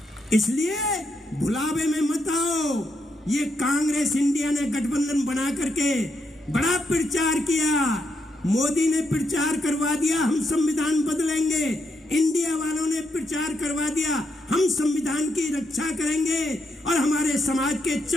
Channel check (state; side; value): normal; both; correlation 0.80